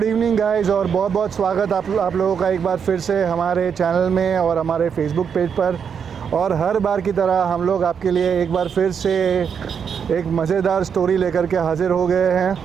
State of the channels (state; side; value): quieter; left; 7.1 dB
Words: evening guys, और बहुत बहुत स्वागत आप लोगों का एक बार फिर से हमारे चैनल में और हमारे फेसबुक पेज पर। और हर बार की तरह हम लोग आपके लिए एक बार फिर से एक मज़ेदार स्टोरी लेकर के हाज़िर हो गए हैं।